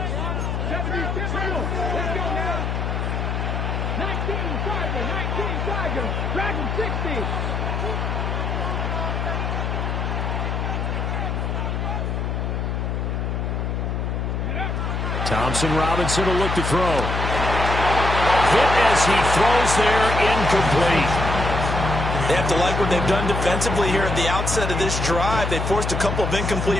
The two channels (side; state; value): left; noise; hum, 1 dB below the sound